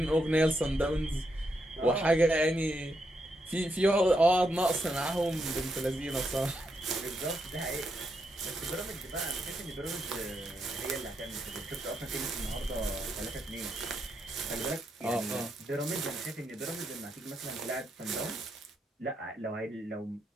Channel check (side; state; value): both; normal; correlation 0.81